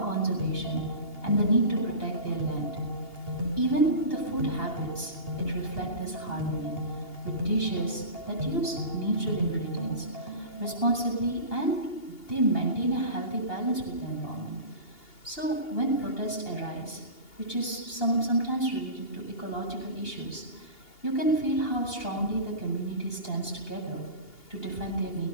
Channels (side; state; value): right; late; 2.8 ms